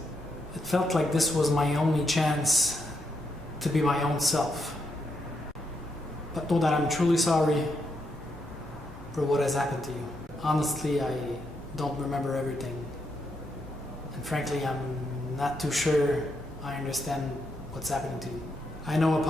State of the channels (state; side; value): normal; both; correlation 0.80